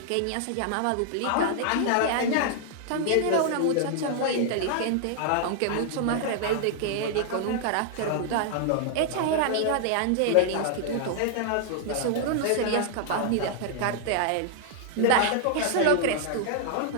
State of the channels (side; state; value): both; different; correlation -0.01